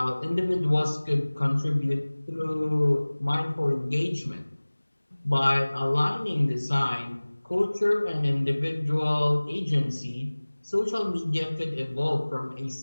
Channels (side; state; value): both; inverted; correlation -1.00